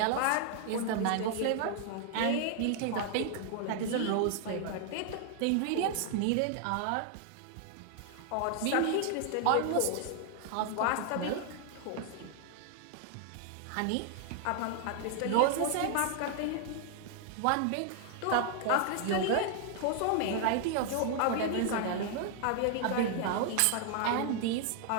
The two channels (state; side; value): different; both; correlation 0.00